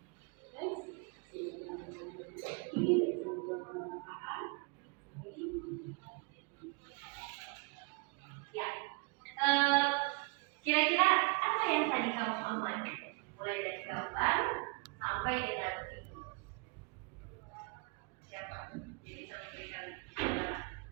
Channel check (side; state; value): left; quieter; 31.7 dB